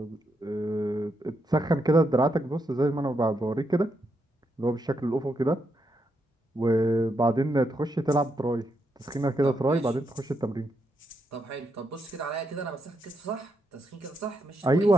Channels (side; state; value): both; normal; correlation 0.81